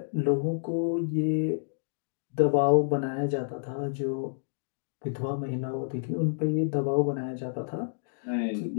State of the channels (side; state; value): right; silent; digital silence